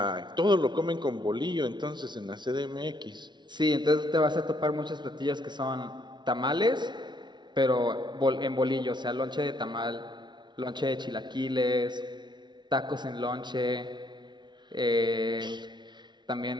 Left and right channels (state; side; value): late; left; 0.21 ms